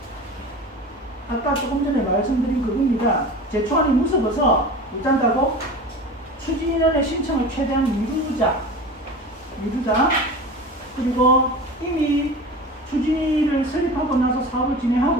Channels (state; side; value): normal; both; correlation 0.34